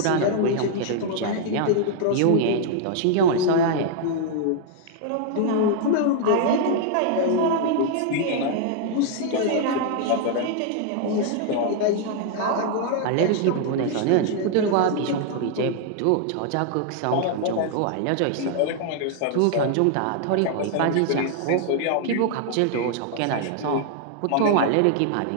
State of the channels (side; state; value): both; different; correlation 0.00